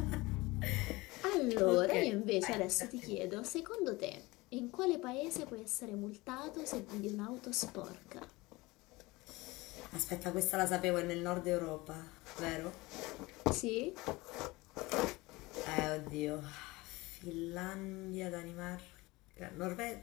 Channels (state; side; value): quieter; right; 21.9 dB